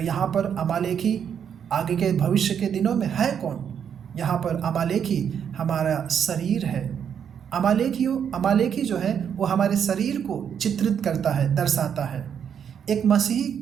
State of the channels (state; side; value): quieter; left; 8.1 dB